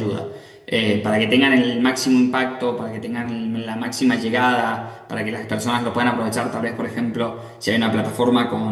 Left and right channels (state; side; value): identical; both; correlation 1.00